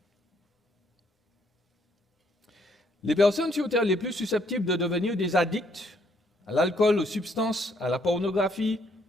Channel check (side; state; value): both; normal; correlation 0.69